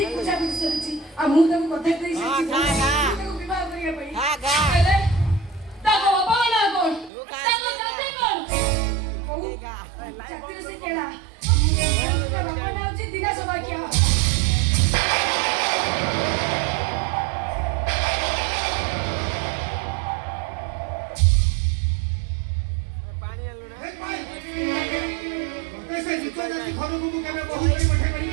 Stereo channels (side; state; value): left; drops out; at 7.1 s